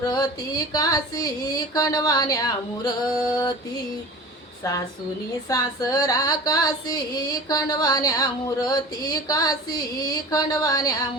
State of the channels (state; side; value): normal; both; correlation 0.37